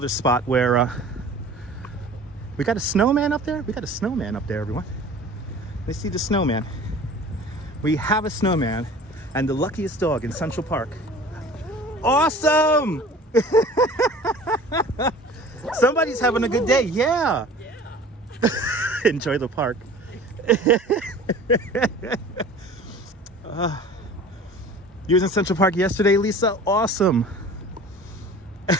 spot where we got a snowman up there. We got a snowman up there, everyone. Let's see the snowman. We have a snowman and the luckiest dog in Central Park. Awesome! Somebody's having a good day. Yeah. Enjoy the park. You was in Central Park yesterday, Lisa? Awesome.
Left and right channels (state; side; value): normal; both; correlation 0.43